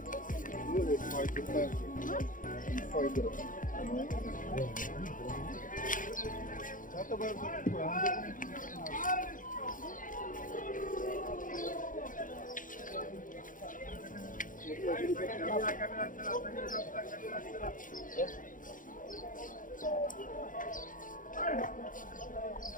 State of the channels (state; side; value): late; right; 0.39 ms